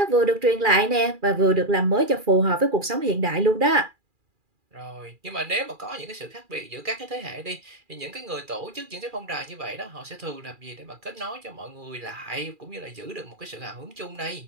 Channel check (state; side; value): late; left; 2.4 ms